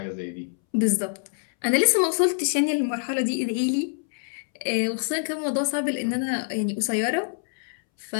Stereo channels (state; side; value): silent; right; 61 dB below the other